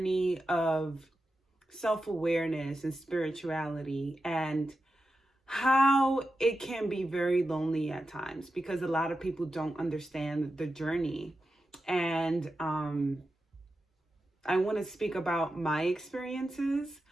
of self-awareness and spirituality, and how it can be very lonely at times because a lot of people don't understand the journey. And I want to speak about my experiences.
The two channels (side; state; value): both; normal; correlation 0.91